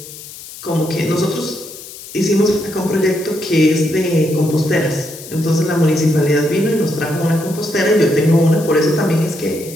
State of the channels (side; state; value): left; noise; hiss, 15 dB below the sound